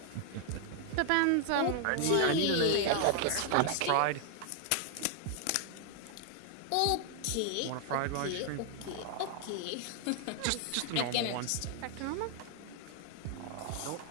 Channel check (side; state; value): both; different; correlation 0.00